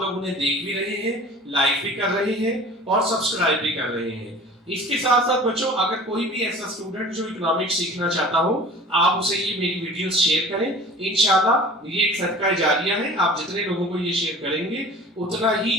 लोग उन्हें देख भी रहे हैं, लाइक भी कर रहे हैं और सब्सक्राइब भी कर रहे हैं। इसके साथ साथ बच्चों, अगर कोई भी ऐसा स्टूडेंट जो इकोनॉमिक्स सीखना चाहता हो, आप उसे ये मेरी वीडियोस शेयर करें। इंशाल्लाह ये एक सदका जारिया है, आप जितने लोगों को ये शेयर करेंगे उतना ही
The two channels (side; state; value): both; normal; correlation 0.42